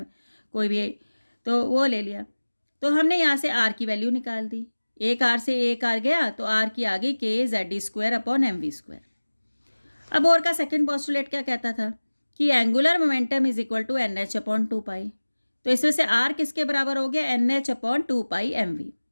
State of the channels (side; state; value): both; inverted; correlation -1.00